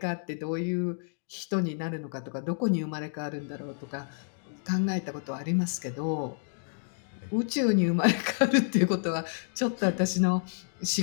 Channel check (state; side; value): silent; right; digital silence